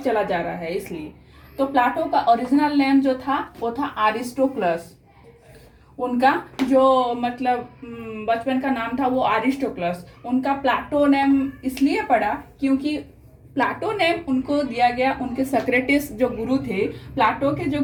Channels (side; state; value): both; identical; correlation 1.00